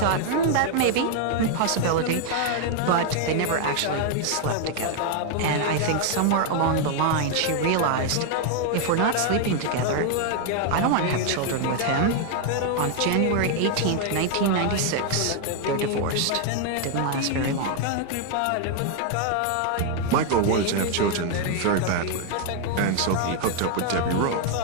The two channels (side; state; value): both; different; correlation 0.00